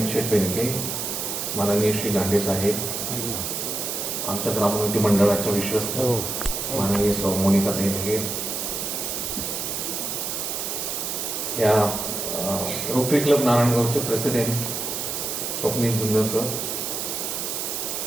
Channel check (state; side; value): noise; right; hiss, 3 dB below the sound